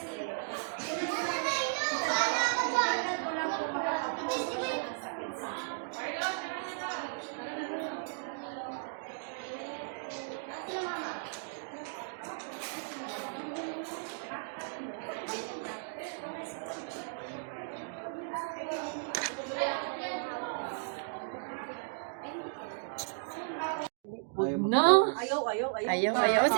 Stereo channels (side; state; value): left; silent; digital silence